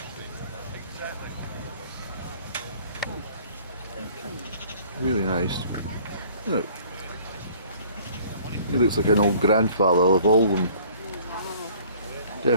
Really nice. Look. He looks like an old grandfather of all of them.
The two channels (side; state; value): both; inverted; correlation -0.54